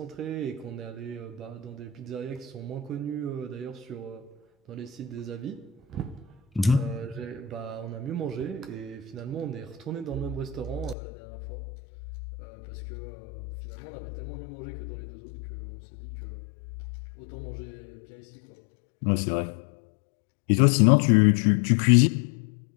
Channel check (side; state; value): right; drops out; at 11.0 s